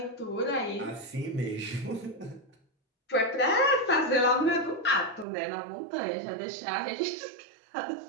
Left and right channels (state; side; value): drops out; left; at 5.2 s